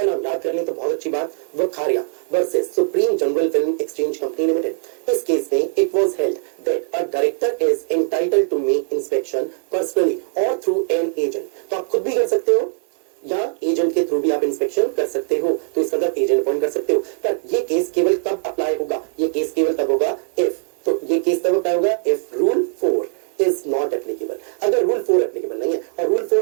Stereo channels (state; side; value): silent; left; 65 dB below the other